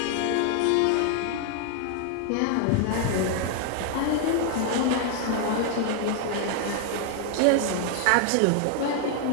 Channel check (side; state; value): both; different; correlation 0.00